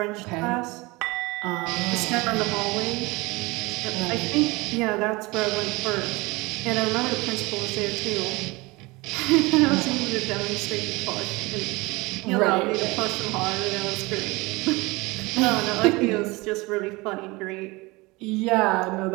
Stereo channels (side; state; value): left; quieter; 23.6 dB